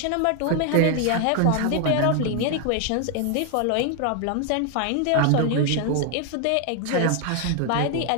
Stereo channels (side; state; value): both; different; correlation 0.00